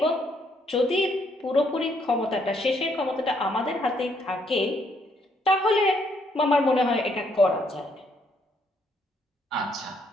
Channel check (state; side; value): normal; both; correlation 0.71